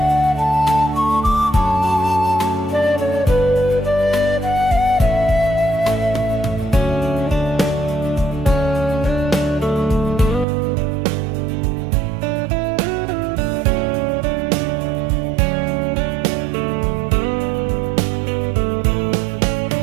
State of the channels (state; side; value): drops out; left; at 10.5 s